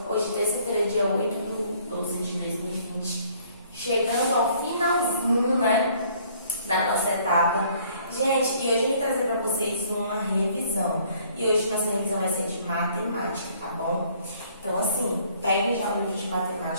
hoje terça-feira, dia 8/12/2020, chegando ao finalzinho, né, da nossa etapa. Gente, e hoje eu vim trazer para vocês uma revisão, e hoje nossa revisão vai ser de matemática, tá bom? Então, assim, peguem já o livro de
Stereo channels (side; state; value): both; inverted; correlation -0.60